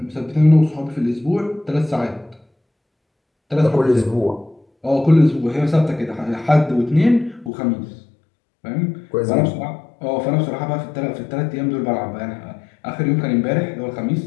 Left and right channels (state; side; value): drops out; right; at 7.5 s